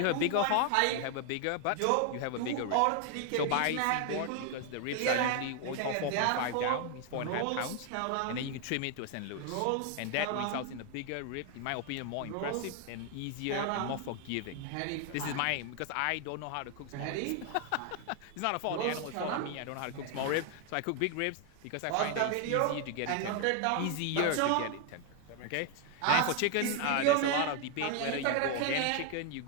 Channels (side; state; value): both; different; correlation 0.00